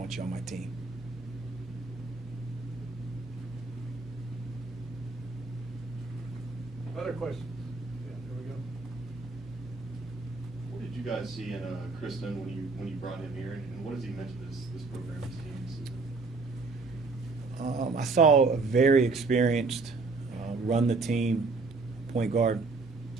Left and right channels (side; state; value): left; quieter; 3.9 dB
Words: you on my team. Other questions? Yeah, there we go. What did you guys see in Kristen when you brought him here, and what does he mention this program, this team? I saw a very experienced, run the team point guard